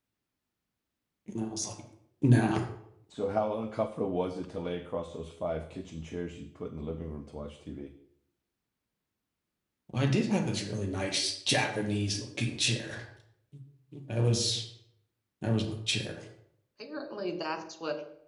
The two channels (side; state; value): both; identical; correlation 1.00